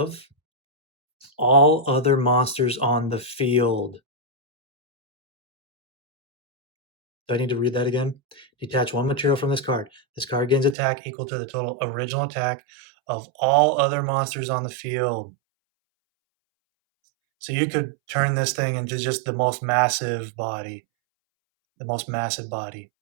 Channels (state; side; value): drops out; left; at 10.8 s